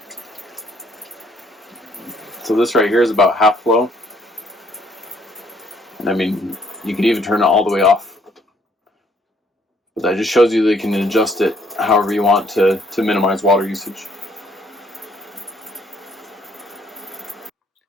So this right here is about half flow. And I mean, you could even turn it all the way off. But that just shows you that you can adjust it however you want to minimize water usage.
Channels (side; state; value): both; normal; correlation 0.65